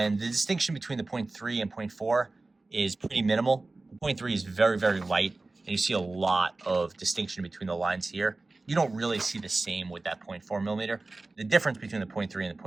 the distinction between the 0.3 and 0.4 is pretty minimal. The 0.3 is very, very light. And you see a lot of distinction between the lines here. You don't really see the same with that 0.4 millimeter. The difference between the 0.3 and the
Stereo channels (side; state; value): left; quieter; 3.3 dB